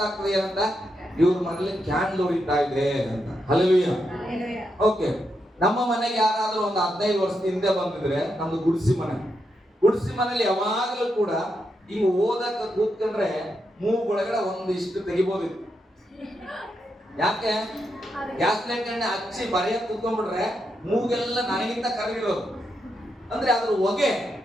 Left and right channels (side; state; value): both; normal; correlation 0.83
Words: ಏನಂತ, ಇವ್ರ ಮನೇಲಿ ಕ್ಯಾಂಡಲ್ ಉರಿತಾ ಇದೆ ಅಂತ. ಹಲ್ಲೆಲೂಯಾ. ಓಕೆ, ನಮ್ಮ ಮನೆಗೆ ಯಾರಾದ್ರೂ ಒಂದು 15 ವರ್ಷದ ಹಿಂದೆ ಬಂದಿದ್ರೆ, ನಮ್ದು ಗುಡಿಸಿ ಮನೇಲಿ ಯಾವಾಗಲೂ ಕೂಡ ಈಗ ಓದಕ್ಕೆ ಕೂತ್ಕೊಂಡ್ರೆ ಮೂಗೊಳಗಡೆ ಒಂದಿಷ್ಟು ತೆಗಿಬೋದಿತ್ತು. ಯಾಕೆ? ಗ್ಯಾಸ್ ಲೈಟ್ ಎಣ್ಣೆ ಹಚ್ಚಿ ಬರೆಯಕ್ಕೆ ಕೂತ್ಕೊಂಡ್ಬಿಟ್ರೆ ಮೂಗೆಲ್ಲ ನನಗಿಂತ ಕರಗಿರೋದು, ಅಂದ್ರೆ ಅದ್ರ ಹೊಗೆ.